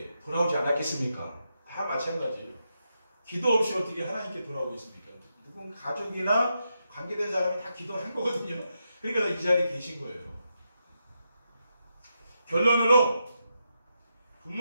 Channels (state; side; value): inverted; both; correlation -0.84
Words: 돌아오지 않았겠습니까? 다 마찬가지예요. 기도 없이 어떻게 하나님께 돌아오겠습니까? 누군 가족이나 관계된 사람이 다 기도한 거거든요. 그러니까 이 자리에 계신 거예요. 결론으로